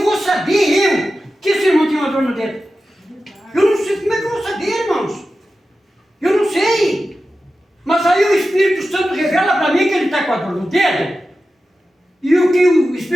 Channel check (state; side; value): normal; both; correlation 0.93